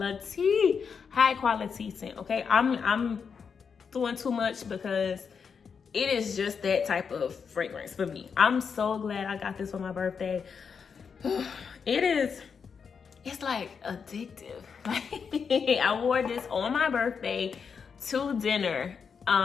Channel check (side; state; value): right; quieter; 6.2 dB